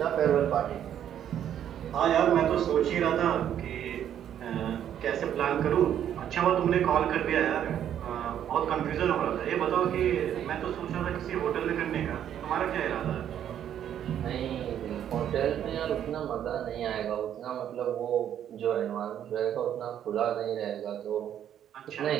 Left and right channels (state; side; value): quieter; left; 10.1 dB